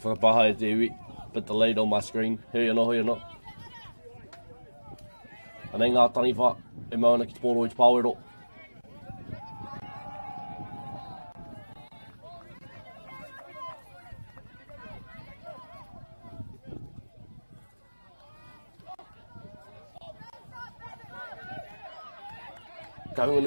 Whakapaha e te iwi. Bit delayed on my screen. Hui anō. Anei ngā taniwha e mauna ki te pōro i te pāwero.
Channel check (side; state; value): both; inverted; correlation -1.00